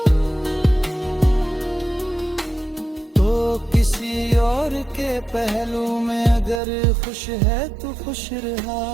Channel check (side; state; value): left; drops out; at 6.6 s